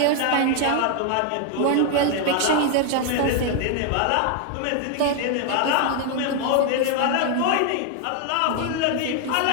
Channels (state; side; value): different; both; correlation 0.00